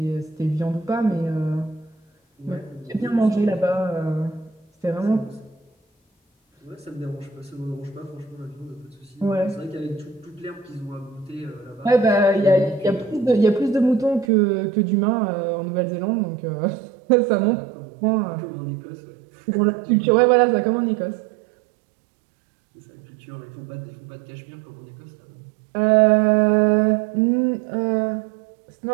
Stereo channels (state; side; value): drops out; left; at 14.3 s